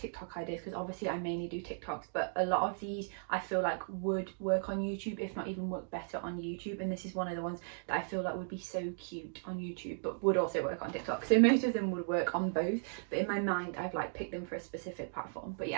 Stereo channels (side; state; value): left; silent; digital silence